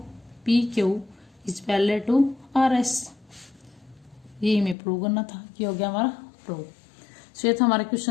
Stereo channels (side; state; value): right; drops out; at 4.8 s